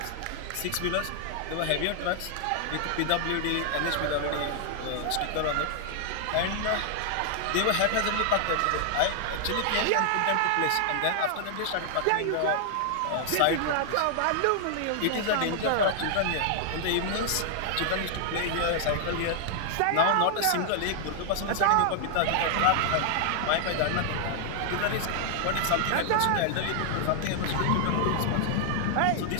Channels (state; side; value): different; both; correlation 0.00